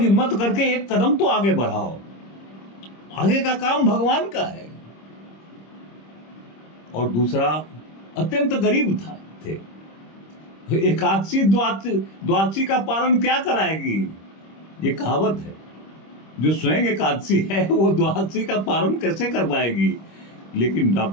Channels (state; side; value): late; right; 26 ms